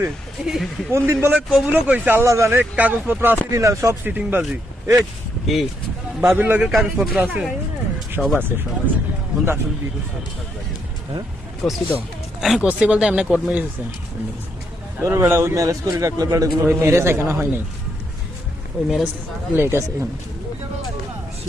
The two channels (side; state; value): both; normal; correlation 0.77